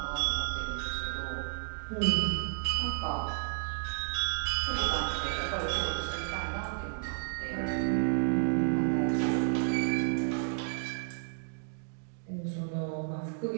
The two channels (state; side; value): silent; left; digital silence